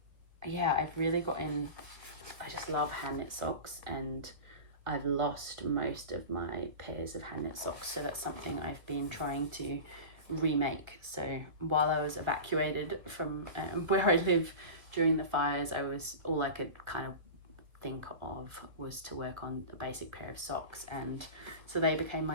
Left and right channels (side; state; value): left; late; 1.5 ms